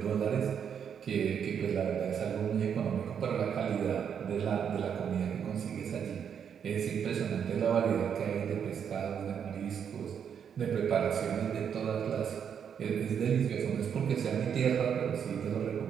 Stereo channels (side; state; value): left; quieter; 7.8 dB